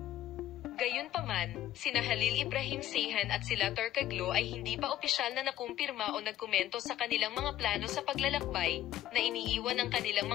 Gayunpaman, sina Halil Ibrahim Ceyhan at sila Turkoglu ay hindi pa opisyal na nakumpirma o nagkomento sa kanilang mga plano sa paglalakbay, na iniiwan ng kanilang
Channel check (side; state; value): right; quieter; 13.1 dB